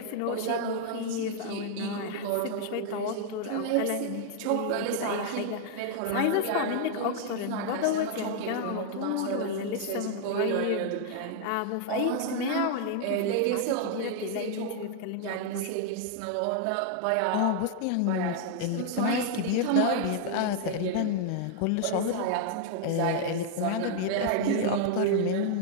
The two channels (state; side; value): different; both; correlation 0.00